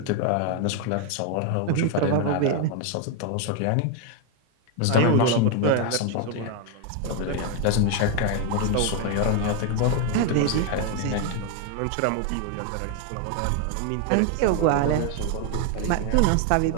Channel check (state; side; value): different; both; correlation 0.01